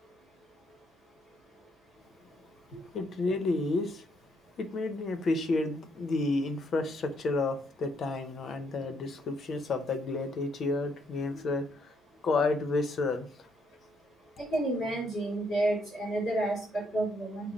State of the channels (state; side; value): normal; both; correlation 0.73